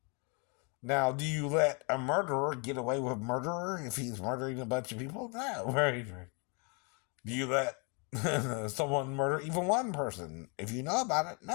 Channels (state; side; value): quieter; right; 34.7 dB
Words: Now, do you let a murderer get away with murder if he's murdering a bunch of people? No, right. Do you let someone murder even one person if you know about it?